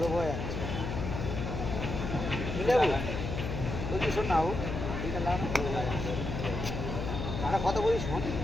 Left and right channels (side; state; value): left; noise; hum, 4 dB below the sound